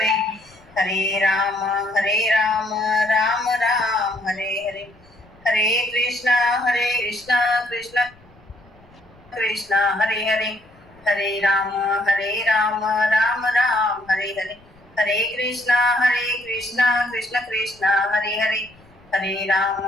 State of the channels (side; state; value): left; noise; rumble, 28 dB below the sound